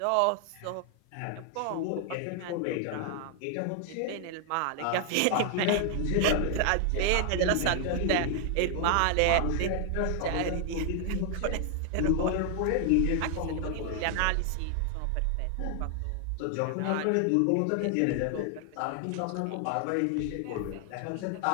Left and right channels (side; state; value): both; different; correlation 0.00